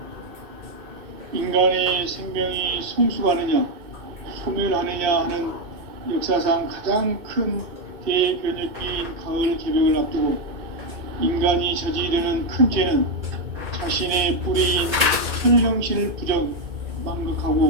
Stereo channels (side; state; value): left; late; 2.3 ms